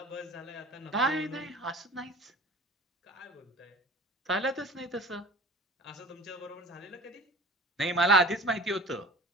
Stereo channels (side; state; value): both; normal; correlation 0.41